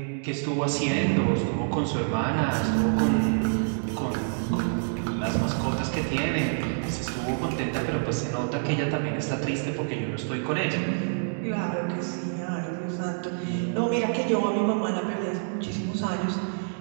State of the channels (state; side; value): silent; left; digital silence